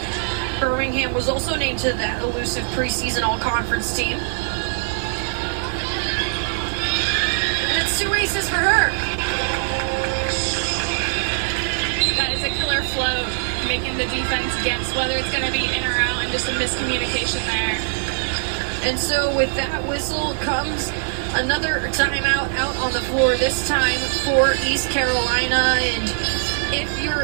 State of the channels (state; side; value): silent; left; digital silence